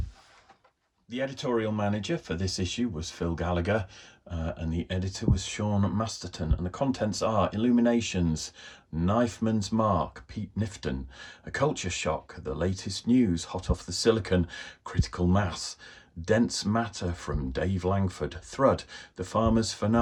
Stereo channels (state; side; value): identical; both; correlation 1.00